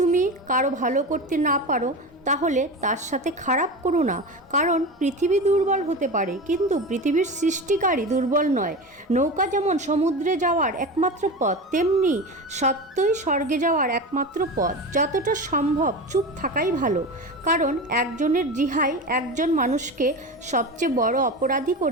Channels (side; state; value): both; normal; correlation 0.26